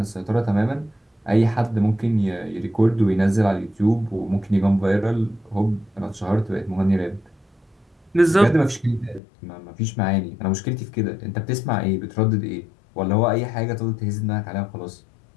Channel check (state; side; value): drops out; right; at 9.2 s